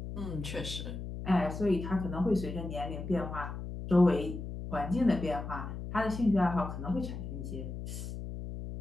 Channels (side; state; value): left; noise; hum, 7 dB below the sound